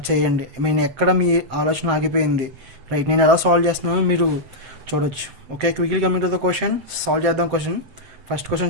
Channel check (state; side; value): late; left; 7.6 ms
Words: చేయండి. నేను ఎక్కడ మీ ఆలోచన ఆగిపోయింది, రైట్ నేను ఎలా సాల్వ్ చేస్తున్నానో మీరు చూడొచ్చు. Okay, quickly coming to the question, solve చేద్దాం క్వశ్చన్. ఫస్ట్ క్వశ్చన్